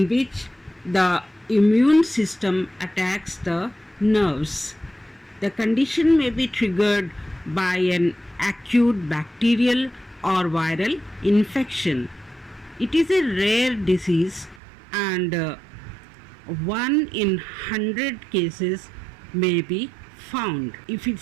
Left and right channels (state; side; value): drops out; left; at 14.6 s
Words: which the immune system attacks the nerves. The condition may be triggered by an acute bacterial or viral infection. It is a rare disease and 1 in 100 cases may be found. If you